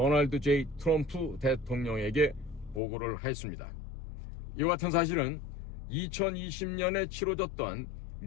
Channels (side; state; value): right; drops out; at 2.8 s